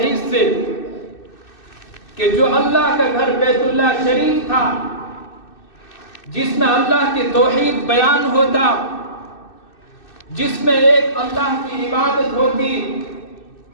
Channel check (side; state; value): right; late; 2.6 ms